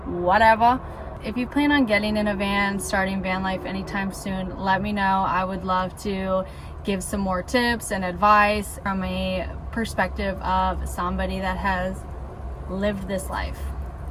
whatever. If you plan on getting in a van, starting van life anytime soon, let me know. I would love to give some more tips and advice from a perspective of somebody that has lived this life.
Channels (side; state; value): both; identical; correlation 1.00